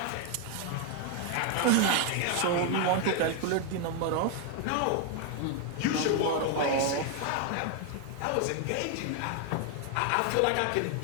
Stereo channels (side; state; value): both; different; correlation 0.01